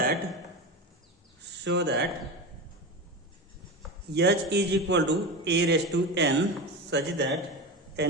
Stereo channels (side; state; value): both; normal; correlation 0.23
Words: H is equal to A raised to n such that